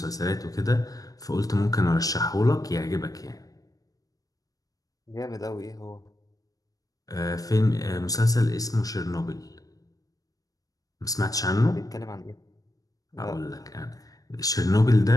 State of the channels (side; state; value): right; late; 0.18 ms